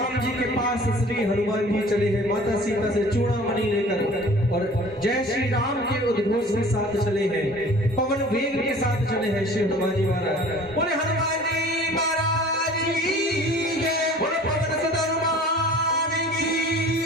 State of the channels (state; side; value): normal; both; correlation 0.47